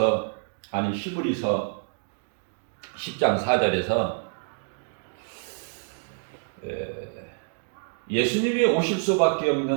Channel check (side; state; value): left; silent; 60 dB below the other